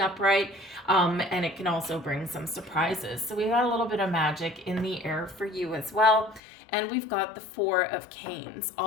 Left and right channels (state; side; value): drops out; right; at 6.4 s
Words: And it can also bring some surprises. So we got a little bit of magic in the air for you as well. And we've got the Four of Canes